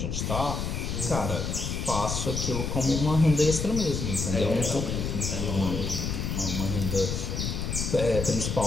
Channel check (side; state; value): left; noise; rumble, 2 dB below the sound